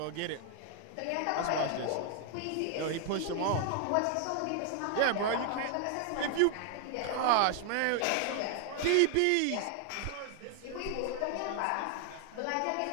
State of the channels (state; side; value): different; both; correlation 0.00